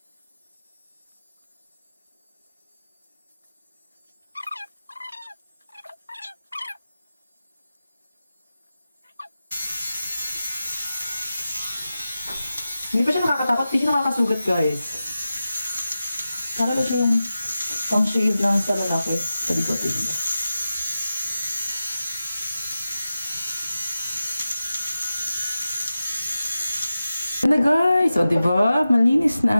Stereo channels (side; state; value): both; inverted; correlation -0.93